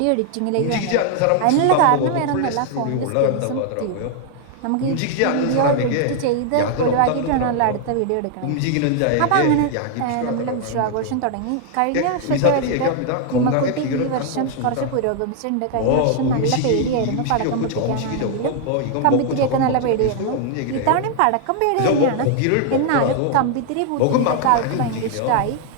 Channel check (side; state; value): both; different; correlation 0.00